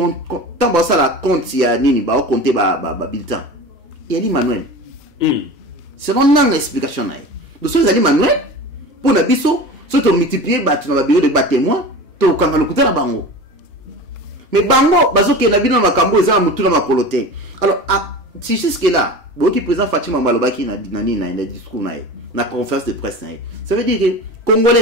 tant que ça la compte il y a nini ba compter ba bulletin il y a Manuel selon une explication na donc ça ali Manuel pour na biso so to multiplier ba tu na bureau de témoin to kanga lokuta na bango mais bango bazo ke na bino makambo eza mutu na makolote alors si jusque là boki président Fatima Malobaki na discours na conférence de presse na ça veut dire que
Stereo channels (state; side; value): normal; both; correlation 0.33